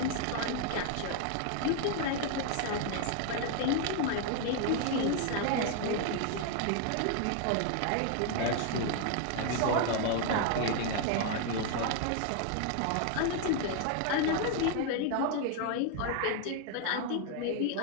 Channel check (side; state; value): both; different; correlation 0.00